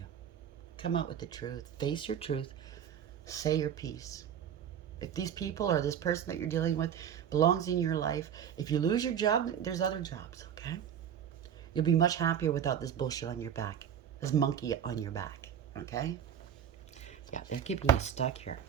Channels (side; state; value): left; quieter; 9.0 dB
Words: Come out with the truth. Face your truth. Say your piece. If these people or this person that you're dealing with belongs in your life, if you lose your job, there's other jobs, okay? You'll be much happier without this bullshit on your back. This monkey on your back, okay? Yeah, they're keeping you stuck here.